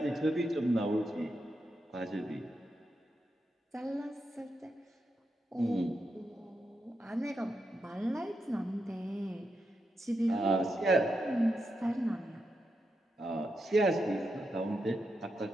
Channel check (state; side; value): normal; both; correlation 0.85